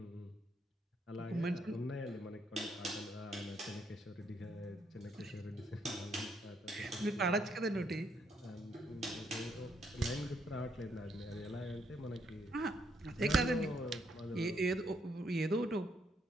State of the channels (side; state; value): both; normal; correlation 0.74